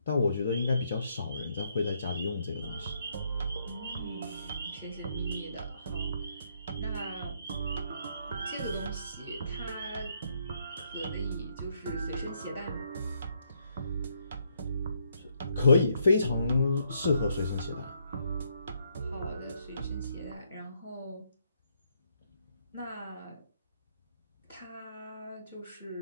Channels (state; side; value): inverted; both; correlation -0.73